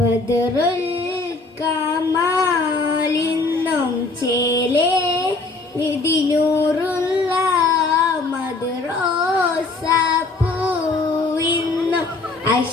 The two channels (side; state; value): right; quieter; 3.5 dB